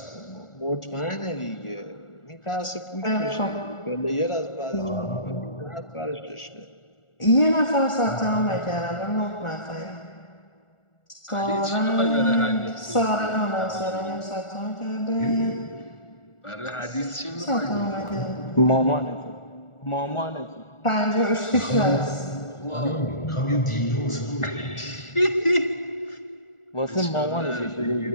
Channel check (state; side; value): late; right; 1.4 ms